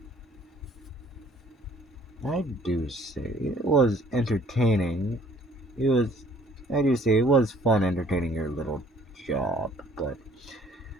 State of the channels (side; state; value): both; normal; correlation 0.57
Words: I do say it was entertaining. I do say it was fun entertaining your little job, but